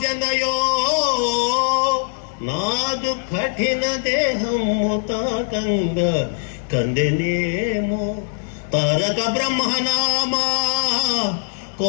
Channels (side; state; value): right; silent; digital silence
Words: నాదు కఠిన దేహము తాకంగా కందెనేమో, తారక బ్రహ్మనామా